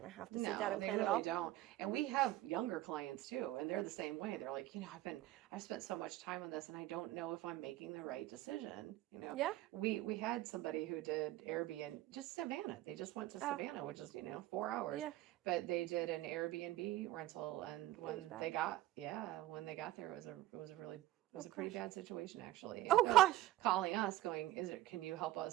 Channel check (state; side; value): quieter; left; 15.3 dB